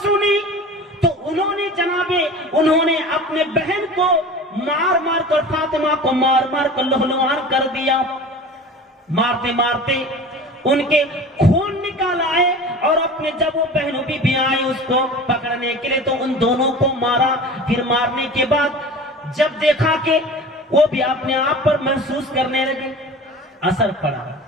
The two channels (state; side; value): normal; both; correlation 0.37